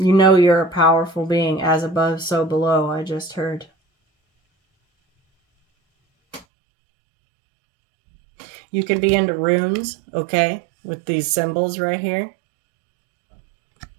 know you're a powerful being, as above, so below, I just heard. You could be into runes, okay, with these symbols right here.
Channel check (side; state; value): left; drops out; at 6.5 s